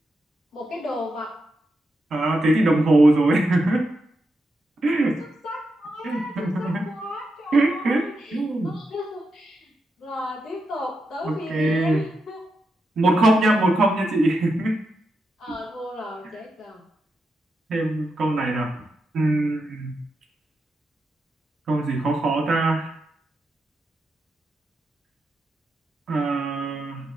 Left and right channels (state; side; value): normal; both; correlation 0.86